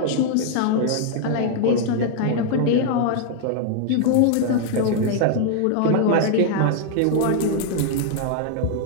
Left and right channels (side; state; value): both; different; correlation -0.01